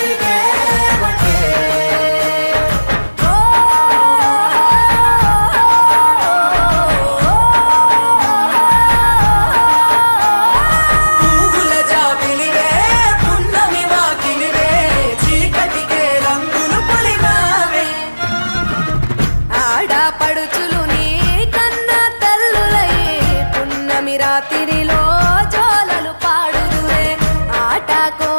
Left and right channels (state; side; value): inverted; both; correlation -1.00